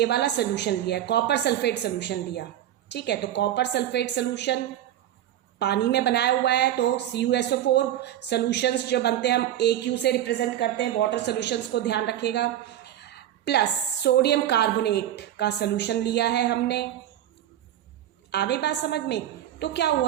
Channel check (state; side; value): quieter; left; 12.0 dB